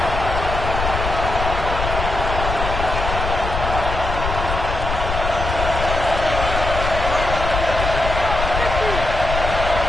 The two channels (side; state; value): left; noise; rumble, 4 dB below the sound